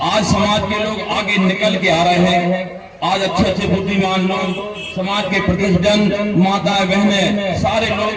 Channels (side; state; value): both; identical; correlation 1.00